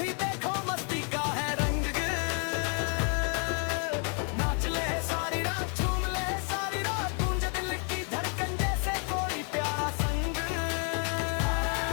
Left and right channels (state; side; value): quieter; right; 39.7 dB